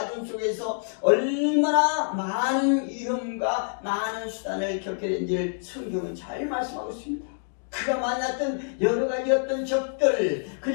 속에서 얼마나 많은 위험과 많은 수단을 겪게 된지를 성경은 잘 말씀하고 있습니다. 그가 만났던 여러 가지 어떤 적들,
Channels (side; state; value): right; silent; digital silence